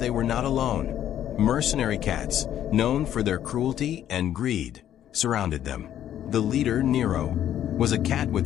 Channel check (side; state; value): right; quieter; 11.1 dB